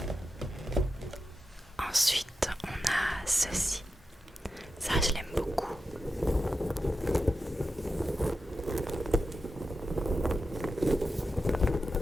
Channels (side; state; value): both; normal; correlation 0.90